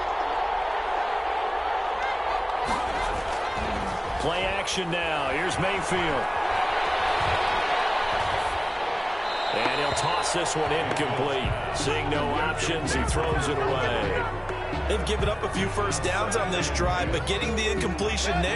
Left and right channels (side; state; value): both; identical; correlation 1.00